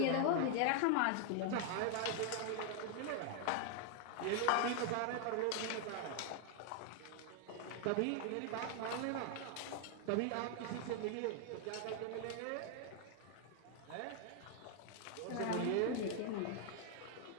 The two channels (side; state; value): both; different; correlation 0.00